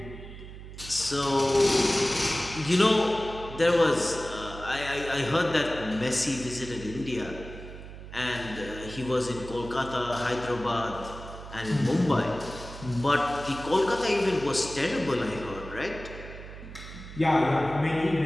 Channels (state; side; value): noise; right; hum, 13 dB below the sound